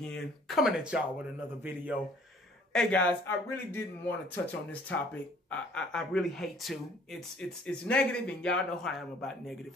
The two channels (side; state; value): both; normal; correlation 0.56